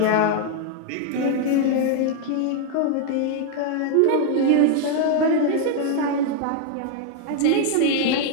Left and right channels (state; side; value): different; both; correlation 0.00